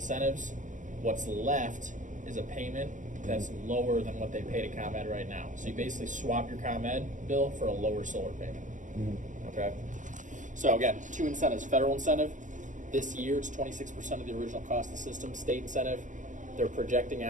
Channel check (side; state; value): left; late; 0.37 ms